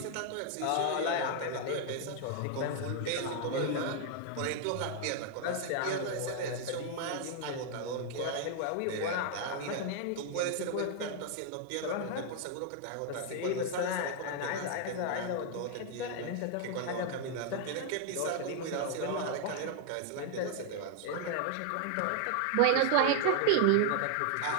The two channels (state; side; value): different; both; correlation 0.00